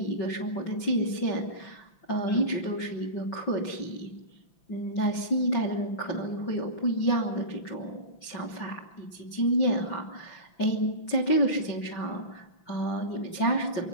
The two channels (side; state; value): right; late; 5.9 ms